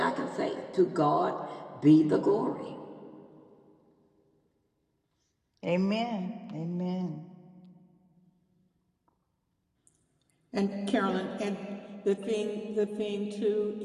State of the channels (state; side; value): identical; both; correlation 1.00